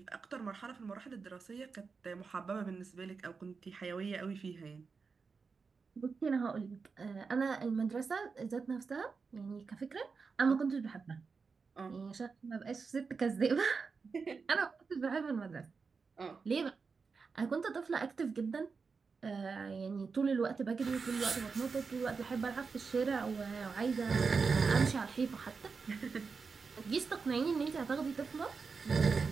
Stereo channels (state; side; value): quieter; left; 5.0 dB